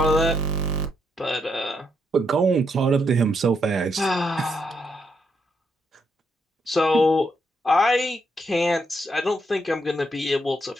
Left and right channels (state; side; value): normal; both; correlation 0.78